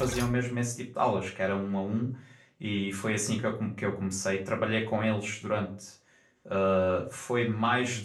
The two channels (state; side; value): identical; both; correlation 1.00